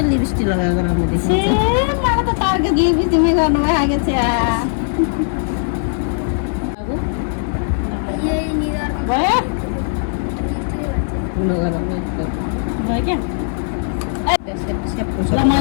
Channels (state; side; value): silent; right; 66 dB below the other